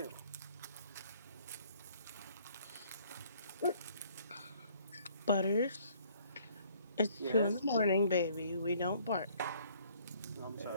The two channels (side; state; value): both; inverted; correlation -0.60